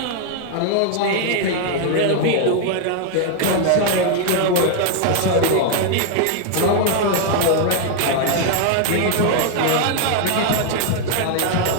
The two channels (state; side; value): different; both; correlation 0.00